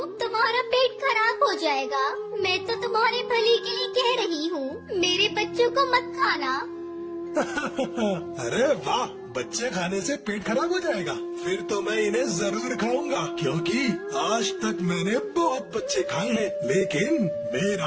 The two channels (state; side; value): identical; both; correlation 1.00